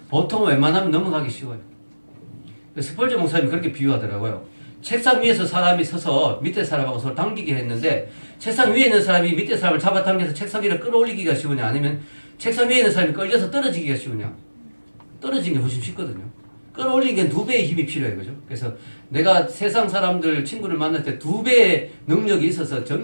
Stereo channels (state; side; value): inverted; both; correlation -1.00